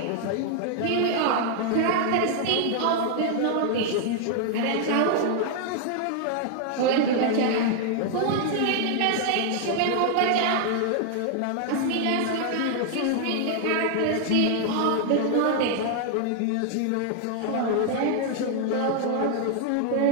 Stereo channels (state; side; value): different; both; correlation 0.00